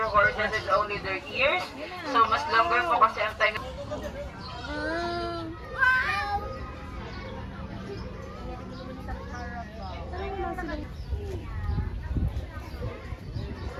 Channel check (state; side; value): identical; both; correlation 1.00